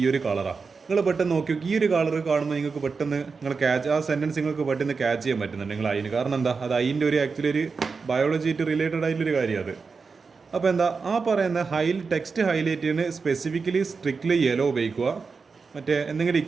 ഒരു കളറാണ്. നിങ്ങൾ പെട്ടെന്ന് നോക്കി ഈ ഒരു കളർ കാണുമ്പോൾ നിങ്ങൾക്ക് പെട്ടെന്ന് നിങ്ങൾ ക്യാച്ച് ആ സെൻറ്റൻസ് നിങ്ങൾക്ക് പെട്ടെന്ന് ക്യാച്ച് ചെയ്യാൻ പറ്റുന്നുണ്ട് നിങ്ങൾ അതിന്. കാരണം എന്താ, അത് അതിൻ്റെ ഒരു ആക്ച്വലി ഒരു ബയോളജിയായിട്ട് റിലേറ്റഡ് ആയിട്ടുള്ളൊരു കാര്യം അത്. അപ്പോൾ എന്താ ആ പറയുന്ന ടെക്സ്റ്റ് ഹൈലൈറ്റ് ചെയ്യുന്ന സ്പെസിഫിക്കലി സ്ട്രിക്ട്ലി യെല്ലോ ഉപയോഗിക്കുക. മറ്റേ എന്തെങ്കിലും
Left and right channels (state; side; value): quieter; left; 4.9 dB